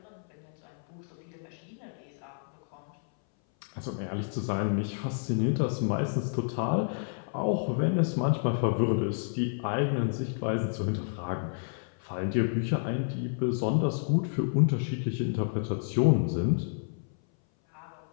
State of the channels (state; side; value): silent; right; 58 dB below the other